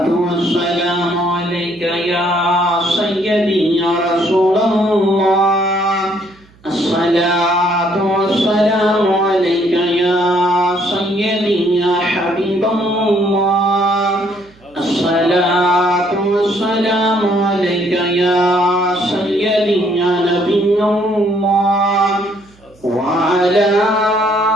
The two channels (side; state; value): right; noise; hum, 29 dB below the sound